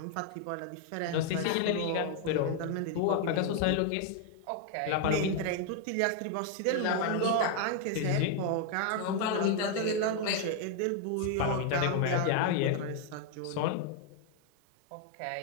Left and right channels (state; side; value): different; both; correlation 0.00